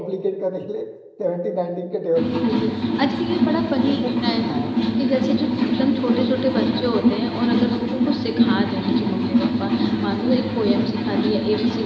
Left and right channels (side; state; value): both; identical; correlation 1.00